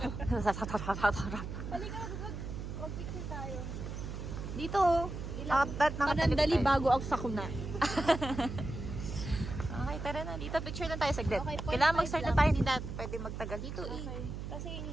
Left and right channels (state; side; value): noise; right; hum, 7 dB below the sound